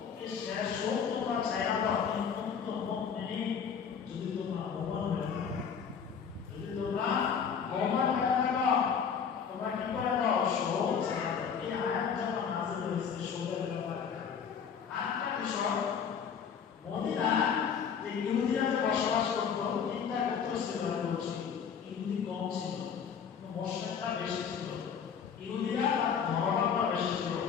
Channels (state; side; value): quieter; right; 7.0 dB